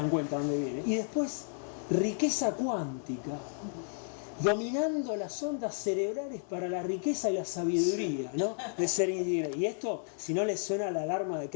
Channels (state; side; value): silent; right; 56 dB below the other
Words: cuenta dónde viene. Y después riqueza cuántica, dominando las ondas cerebrales para la riqueza y la sabiduría, ¿no? De ser individuo. Y esto, si no les suena la alarma de